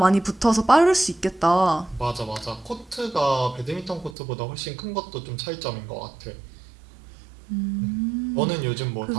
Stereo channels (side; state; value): left; drops out; at 4.2 s